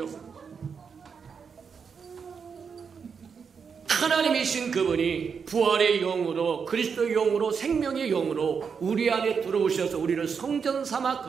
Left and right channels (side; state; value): left; quieter; 6.1 dB